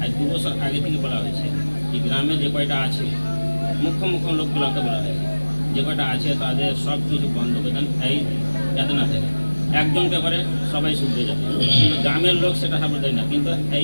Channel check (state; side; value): inverted; both; correlation -1.00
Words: আজ 2 বছর আগে থেকে বলা হয়েছে, এই গ্রামে যে কয়টা আছে মুখ্য লোকগুলোকে বলা হয়েছে, যে কয়টা আছে তাদের সব কিছু বন্ধ করে দেন, এই যাতে না থাকে। একজনকে করে সবাই শুনতে যাবে, কিন্তু গ্রামের লোক সেটা সাপোর্ট দেয় না, কিন্তু এই